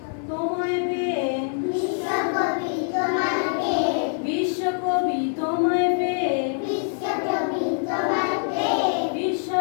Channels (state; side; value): silent; right; digital silence